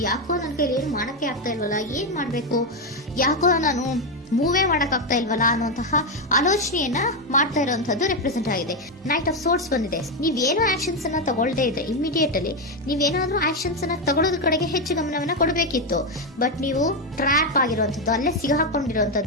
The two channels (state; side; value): normal; both; correlation 0.07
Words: ಯಾಕೋ ನನ್ ಕೈಲಿ ಏನು ಮಾಡಕ್ಕೆ ಆಗ್ತಾ ಇಲ್ವಲ್ಲ, ಏನ್ ಮಾಡ್ಬೇಕು, ಯಾಕೋ ನಾನು ಮೂವೇ ಮಾಡಕ್ ಆಗ್ತಾ ಇಲ್ವಲ್ಲ ಅನ್ನುವಂತಹ ಆಲೋಚನೆಯನ್ನ ಮಾಡ್ತಾ ಇರುವಂತದ್ದು ರೆಪ್ರೆಸೆಂಟ್ ಆಗಿದೆ. ನೈಟ್ ಆಫ್ ಸೋರ್ಟ್ಸ್ ಬಂದಿದೆ. ನೀವೇನೋ ಆಕ್ಷನ್ಸ್ ಅನ್ನ ತಗೊಳ್ದೇ ಇದ್ರೆ ಇಮಿಡಿಯೇಟ್ ಅಲ್ಲಿ ನೀವೇನಾದ್ರೂ ಆಕ್ಷನ್ಸ್ ಅನ್ನ ತಗೊಳ್ಳೋದ್ರ ಕಡೆಗೆ ಹೆಚ್ಚು ಗಮನವನ್ನ ಕೊಡಬೇಕಿತ್ತು. ಬಟ್ ನೀವು ಟ್ರ್ಯಾಪ್ ಆಗಿರುವಂತದ್ದು, ಅಲ್ಲೇ